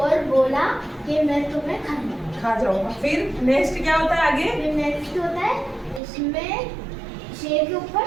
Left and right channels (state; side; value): drops out; left; at 6.0 s